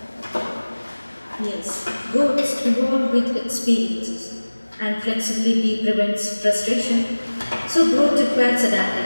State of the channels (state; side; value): inverted; both; correlation -1.00